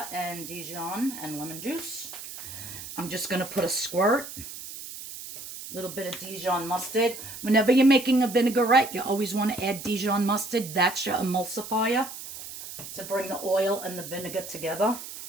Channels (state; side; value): noise; right; hiss, 11 dB below the sound